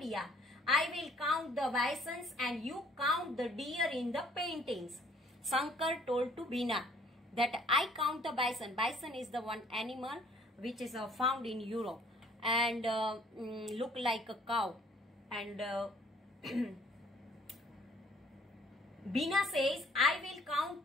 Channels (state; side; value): normal; both; correlation 0.59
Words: I will count the bisons and you count the deer in the paintings. Sankar told to Bina that I count the bison. Bison is the one animal which is found in Europe and look like a cow. And Bina says, I will count